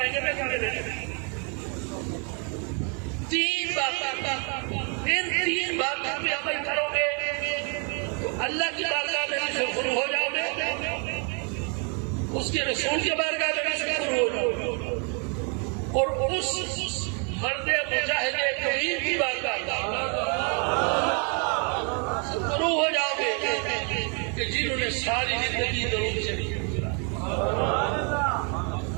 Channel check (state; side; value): quieter; left; 37.1 dB